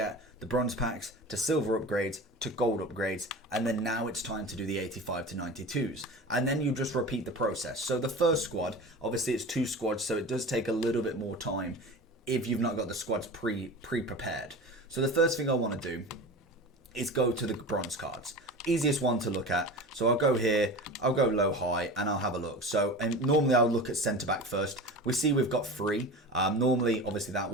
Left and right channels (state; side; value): normal; both; correlation 0.32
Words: the bronze packs to silver upgrades to gold upgrades, and then now it's time to do the 85 to 92s, and then you just repeat the process. So the first squad, obviously it's 2 squads, so it does take a little bit more time if you've not got the squads pre-prepared. So the first thing I want to do is go to the bronze cards. Easiest one to look at. So I'll go here, I'll go low high, and I'll have a look. So normally I'll look at centre back first. We see we've got 3. Normally, obviously that